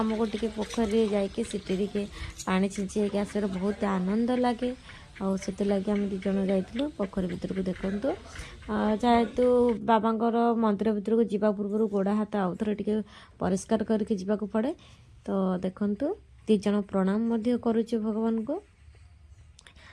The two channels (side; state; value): both; identical; correlation 1.00